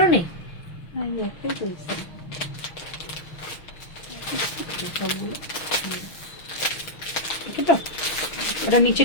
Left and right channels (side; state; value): right; late; 6.1 ms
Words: নেই, ওটা নিচে